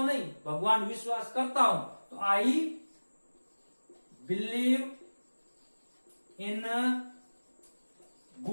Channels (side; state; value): both; inverted; correlation -1.00